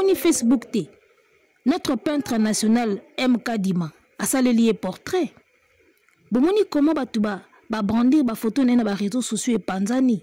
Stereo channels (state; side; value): identical; both; correlation 1.00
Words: Facebook T. Notre peintre national MK Dima a salé portrait. Bomoni comment batuba ba brandir ba photo na ba réseaux sociaux et